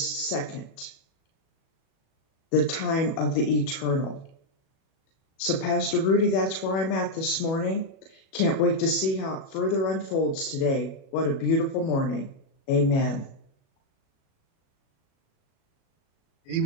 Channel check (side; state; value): right; late; 37 ms